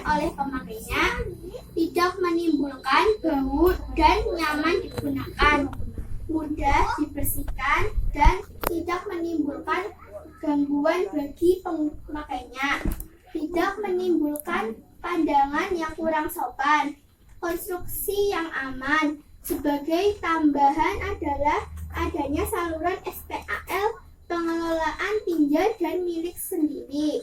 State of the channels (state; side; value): identical; both; correlation 1.00